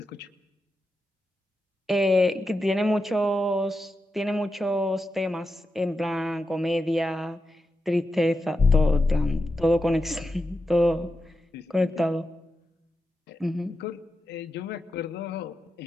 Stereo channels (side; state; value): both; normal; correlation 0.88